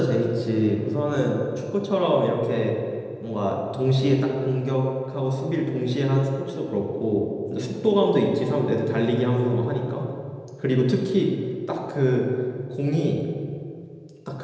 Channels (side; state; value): both; identical; correlation 1.00